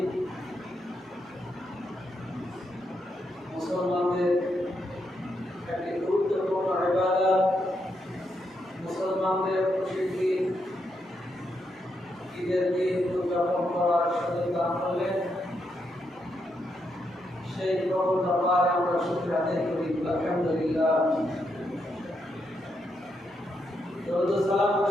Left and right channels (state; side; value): normal; both; correlation 0.81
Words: মুসলমানদের একটি গুরুত্বপূর্ণ ইবাদত, মুসলমানদের প্রসিদ্ধি ঈদের দিন উদযাপন করার সুযোগ দান করলেন। সেই প্রভুর দরবারে আমরা শুকরিয়া আদায় করি। আলহামদুলিল্লাহ। দরুদ ও সালাম